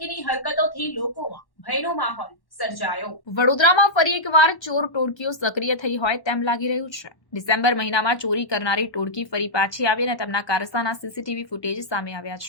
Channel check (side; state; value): right; late; 1.1 ms